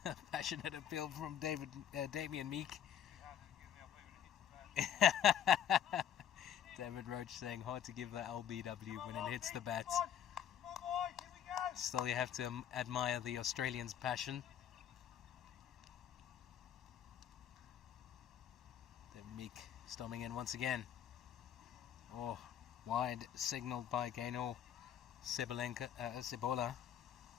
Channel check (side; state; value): right; quieter; 9.7 dB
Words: Passionate appeal from Damien Meek. David Roach saying hard to give the LBW when it hits the bat. Still, you have to admire the Australians' passion. David Meek storming in once again. Oh, wide signalled by Gaynor Cebola.